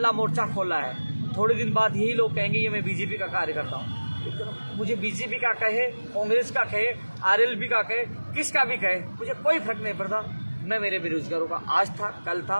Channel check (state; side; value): inverted; both; correlation -1.00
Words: मोर्चा खोला है, थोड़े दिन बाद यही लोग कहेंगे ये मैं बीजेपी का कार्यकर्ता हूँ। मुझे बीजेपी का कहे, कांग्रेस का कहे, RLB का कहे, किसका भी कहे, मुझे कोई फर्क नहीं पड़ता। मैं मेरे बेरोजगारों का आज था, कल